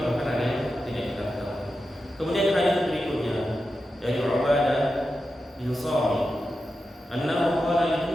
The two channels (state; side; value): normal; both; correlation 0.90